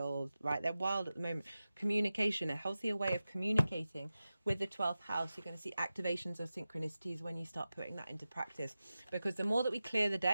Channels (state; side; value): inverted; both; correlation -0.95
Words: right? They're wild at the moment. Communication. A healthier way of communicating with the 12th house. You're going to see activations of synchronicities when you start putting that into practice. Because the more that we clear the